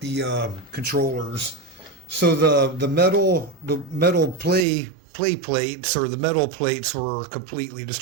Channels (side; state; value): left; drops out; at 4.7 s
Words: controllers. So the metal play plates, or the metal plates, were completely